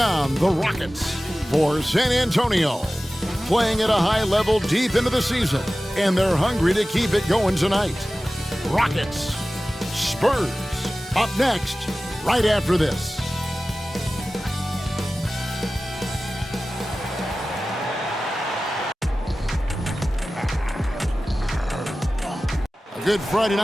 the Rockets for San Antonio. Playing at a high level deep into the season, and they're hungry to keep it going tonight. Rockets, Spurs, up next, right after this. A good Friday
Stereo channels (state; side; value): normal; both; correlation 0.96